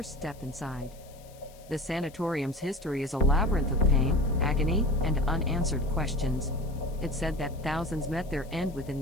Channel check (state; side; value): noise; left; hiss, 25 dB below the sound